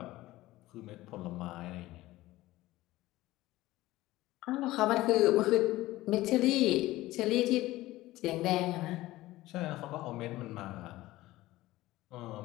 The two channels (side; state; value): right; quieter; 17.3 dB